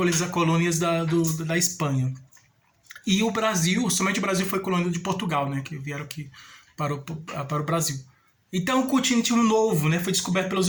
da Espanha. E o Brasil, somente o Brasil foi colônia de Portugal, né? Que vieram aqui para o Brasil. Então o continente novo, né? Foi descoberto pelos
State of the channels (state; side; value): identical; both; correlation 1.00